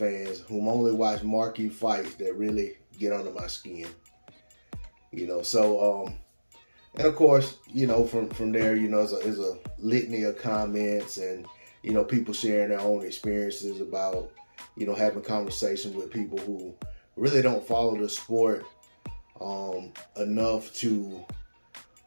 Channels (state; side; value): inverted; both; correlation -1.00